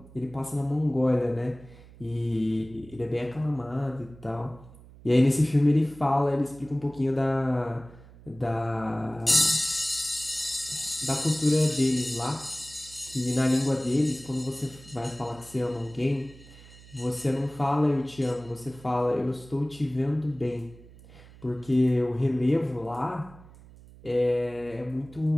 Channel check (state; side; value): noise; right; hum, 21 dB below the sound